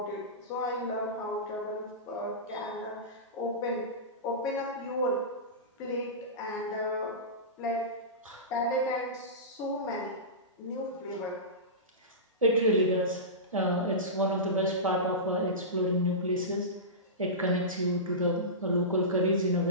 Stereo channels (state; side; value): normal; both; correlation -0.19